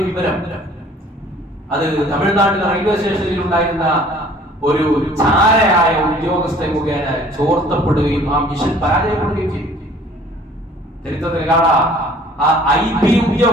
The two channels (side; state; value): both; normal; correlation 0.53